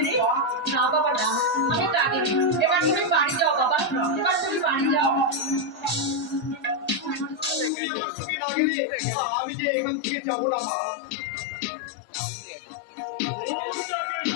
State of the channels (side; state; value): right; drops out; at 7.7 s